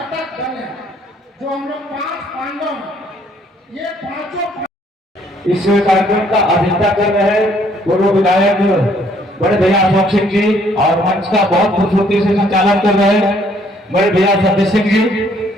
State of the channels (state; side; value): normal; both; correlation 0.64